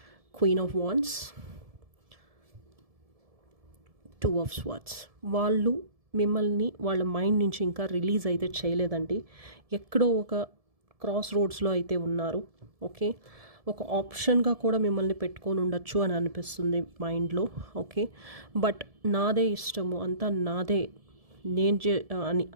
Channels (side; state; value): left; late; 1.7 ms